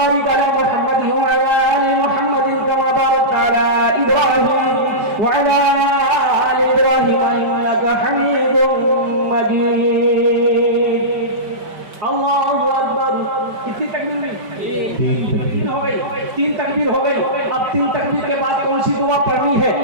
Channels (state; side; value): late; left; 5.2 ms